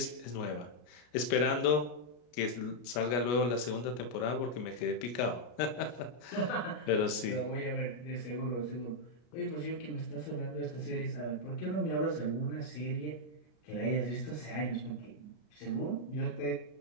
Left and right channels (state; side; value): late; right; 33 ms